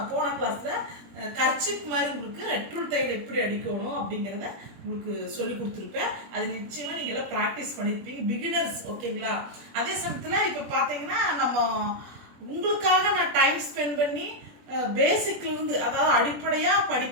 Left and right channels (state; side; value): late; left; 21 ms